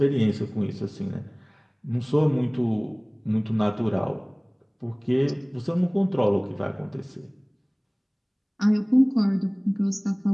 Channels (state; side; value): identical; both; correlation 1.00